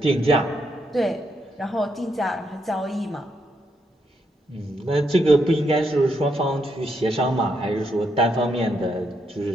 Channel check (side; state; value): both; normal; correlation 0.78